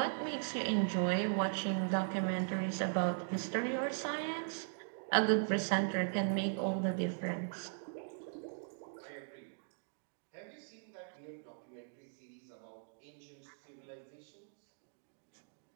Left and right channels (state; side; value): silent; left; digital silence